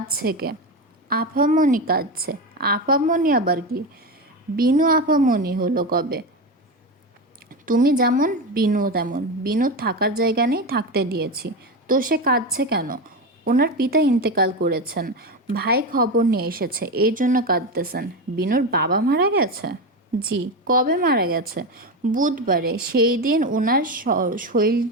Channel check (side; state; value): both; normal; correlation 0.17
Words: কে? আপামনি কাঁদছে। আপামনি আবার কি? বিনু আপামনি হলো কবে? তুমি যেমন বিনু তেমন। বিনুর থাকার জায়গা নেই, থাকতে দিয়েছি। তো সে কাঁদছে কেন? ওনার পিতা ইন্তেকাল করেছেন, ভাই খবর নিয়ে এসেছে, এই জন্য কাঁদতেছেন। বিনুর বাবা মারা গেছে? জি। কবে মারা গেছে? বুধবারে। সেই দিন ওনার